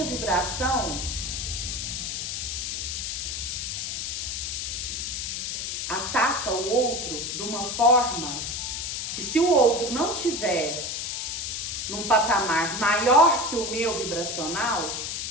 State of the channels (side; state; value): left; noise; hiss, 3 dB below the sound